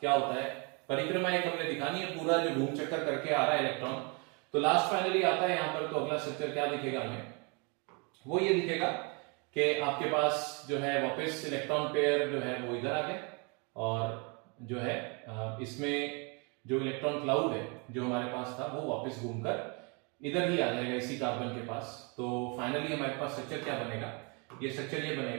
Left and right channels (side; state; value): left; quieter; 32.9 dB